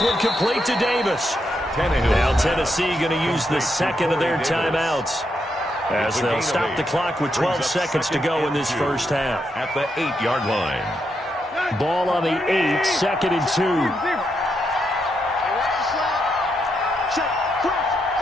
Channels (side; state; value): both; normal; correlation 0.81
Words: one complete to Davis. Now Tennessee going to use the 2nd of their timeouts as they'll stop the clock with 12 seconds to go in this first half. At the 8-yard line. Ball on the 8, 2nd and 2.